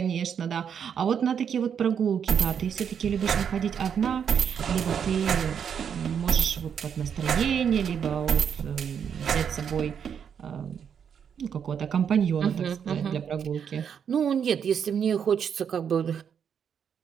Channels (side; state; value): left; quieter; 7.7 dB